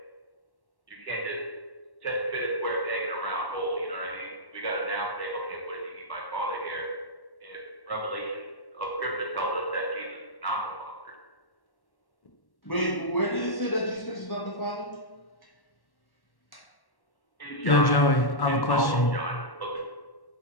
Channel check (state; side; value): late; right; 1.1 ms